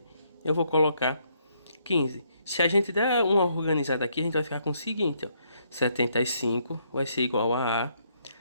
Eu vou colocar 15. Se a gente der uma organizada aqui, a gente vai ficar com o seguinte, ó. 75 vai ser igual a A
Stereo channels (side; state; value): both; inverted; correlation -0.72